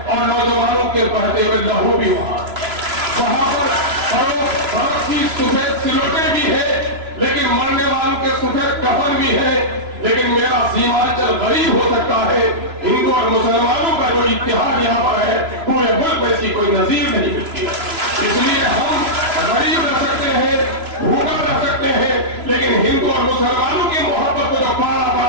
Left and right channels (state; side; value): late; left; 3.0 ms